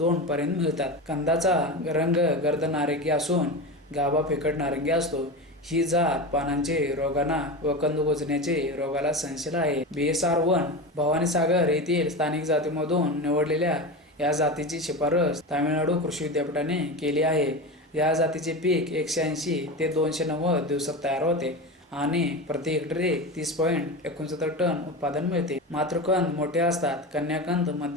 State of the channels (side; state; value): both; normal; correlation 0.24